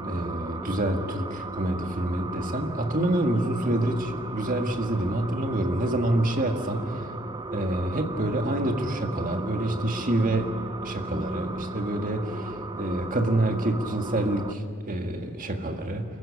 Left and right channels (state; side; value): normal; both; correlation 0.67